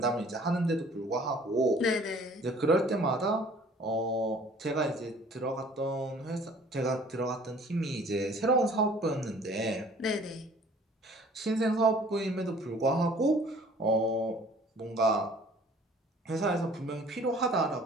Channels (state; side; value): normal; both; correlation 0.53